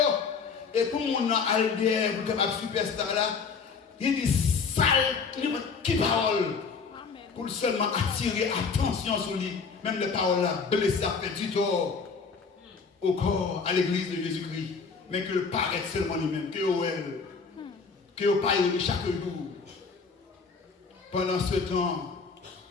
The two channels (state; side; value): quieter; right; 5.3 dB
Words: Et tout le monde a allié pour capable superstar là. Il dit sale, qui parole. Pour seulement attirer attention sur lui. Même les paroles là, blessées, fait du tort au corps, à l'église de Jésus-Christ. Mais que le paraît seulement lui-même, que elle, que le paye chaque jour. Pendant ce temps,